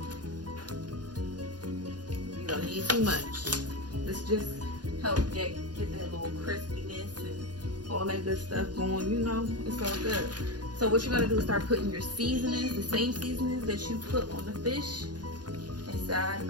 You don't need too much. This just help get that little crispiness and all that good stuff going. You know, it's all good. So what you're gonna do is start putting your seasonings, the same seasonings that you put on the fish, inside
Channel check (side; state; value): left; late; 0.69 ms